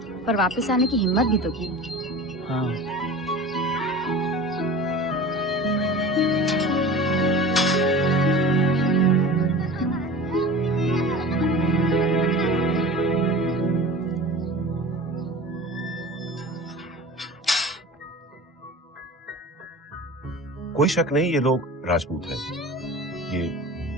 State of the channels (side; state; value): both; normal; correlation 0.36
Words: पर वापस आने की हिम्मत भी तो की। हाँ। कोई शक नहीं ये लोग राजपूत हैं।